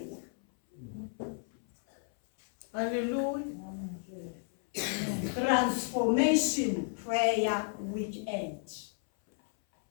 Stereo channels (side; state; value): right; silent; 56 dB below the other